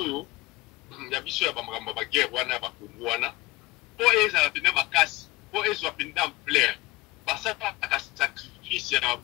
ya biso ya bamramba ba guerre wana ba kongo wana po ezala pena makasi po ezwa pena en plein basaka ka sacrifice ya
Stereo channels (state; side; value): quieter; right; 20.9 dB